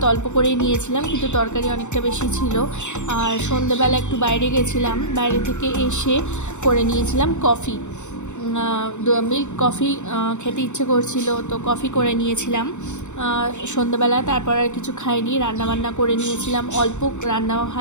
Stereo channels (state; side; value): late; right; 0.84 ms